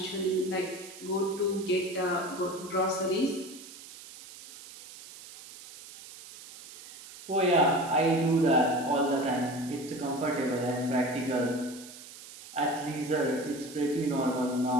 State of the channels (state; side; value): noise; right; hiss, 16 dB below the sound